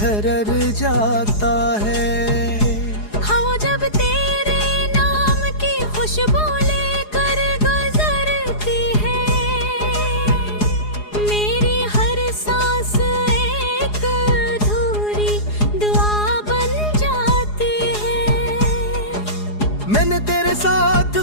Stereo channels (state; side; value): late; right; 4.8 ms